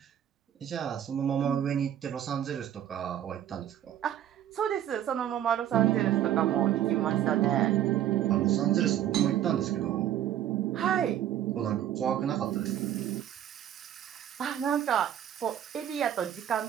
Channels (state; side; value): quieter; left; 11.1 dB